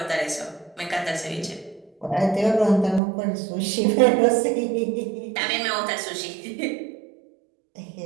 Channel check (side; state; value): left; drops out; at 3.0 s